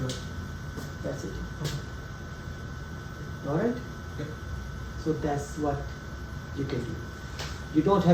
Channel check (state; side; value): identical; both; correlation 1.00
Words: That's it. Alright? Yep. So that's what you can do. You don't